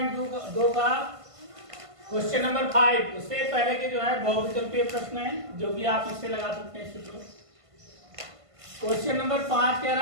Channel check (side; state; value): left; late; 1.5 ms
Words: का question number 5। उससे पहले के जो है बहुविकल्पीय प्रश्न है जो कि आप इससे लगा सकते हैं। क्वेश्चन नंबर 5 कह